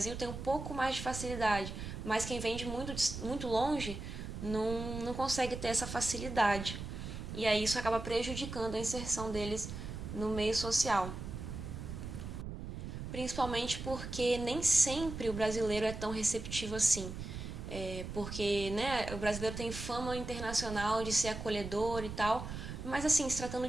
têm um pouco mais de facilidade, mas quem vem de muito longe não consegue ter essa facilidade. E aí isso acaba prejudicando a inserção deles no meio social. Principalmente porque nem sempre o brasileiro é tão receptivo assim. Porque, né, o brasileiro tem fama internacional de ser acolhedor e tal, mas assim, se tratando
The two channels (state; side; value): noise; right; rumble, 8 dB below the sound